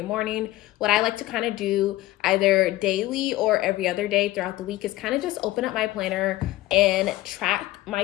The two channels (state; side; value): quieter; right; 16.8 dB